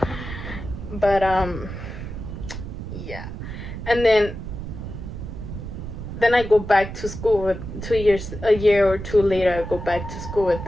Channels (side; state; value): right; noise; rumble, 8 dB below the sound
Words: But yeah. And then I go back to school with a year or two later, I go back to school with